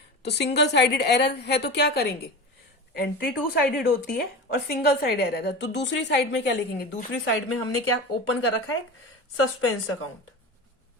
तो सिंगल साइडेड एरर है तो क्या करेंगे? एंट्री टू साइडेड होती है और सिंगल साइड एरर है, तो दूसरी साइड में क्या लिखेंगे? दूसरी साइड में हमने क्या ओपन कर रखा है? Suspense account.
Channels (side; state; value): both; normal; correlation 0.28